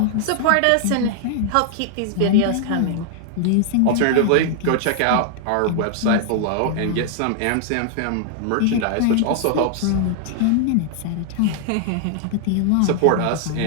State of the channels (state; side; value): different; both; correlation 0.00